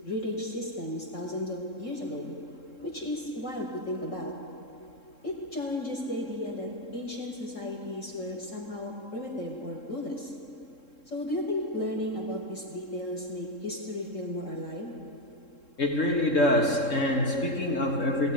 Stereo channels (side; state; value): right; late; 3.7 ms